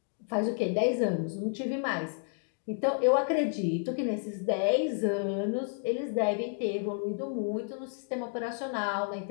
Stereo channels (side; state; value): right; silent; 57 dB below the other